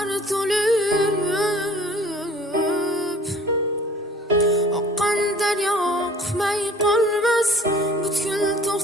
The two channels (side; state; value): both; normal; correlation 0.51